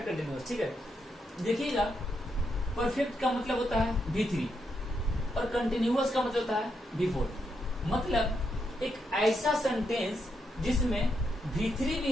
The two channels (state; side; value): normal; both; correlation 0.81